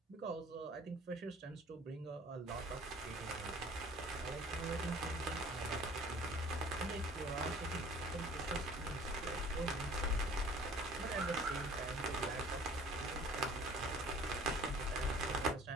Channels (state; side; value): normal; both; correlation 0.50